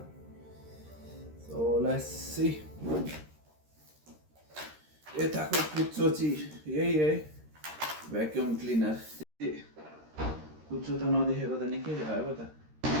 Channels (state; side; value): late; left; 13 ms